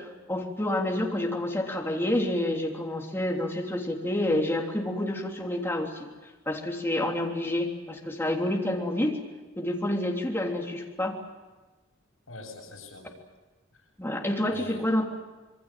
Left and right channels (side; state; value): both; normal; correlation 0.71